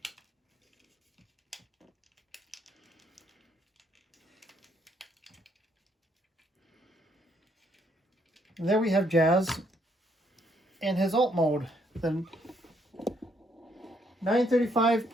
And there we have Jazz in his alt mode, the 935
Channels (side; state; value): both; normal; correlation 0.71